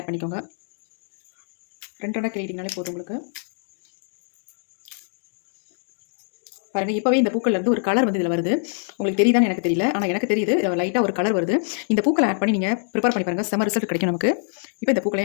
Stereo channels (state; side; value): silent; right; 63 dB below the other